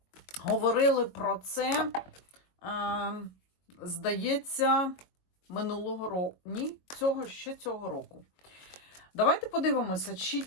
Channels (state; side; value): late; right; 22 ms